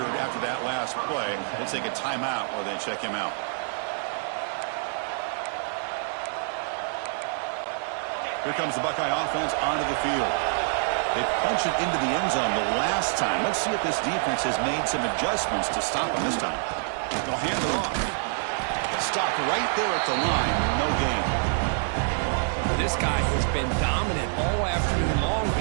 after that last play. We'll take a timeout while they check him out. Here comes the Buckeye offense onto the field. They punch it into the end zone the last time. Let's see if this defense has made some adjustments to stop them this time. They'll hand it off. Stopped right there at the line. No gain. This guy has been dominant all afternoon long,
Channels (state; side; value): silent; left; digital silence